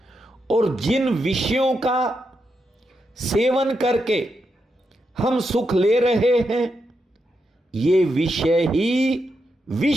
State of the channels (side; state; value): both; normal; correlation 0.84